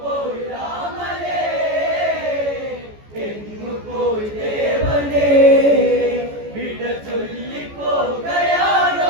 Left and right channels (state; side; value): late; left; 14 ms